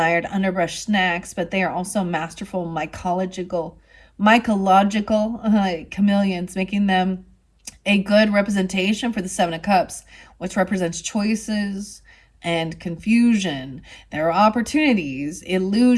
underbrush snacks, but they are also masterful mycological chameleons, making them a good representation for the Seven of Cups, which represents choices and confusion. There are opportunities,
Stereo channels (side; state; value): both; identical; correlation 1.00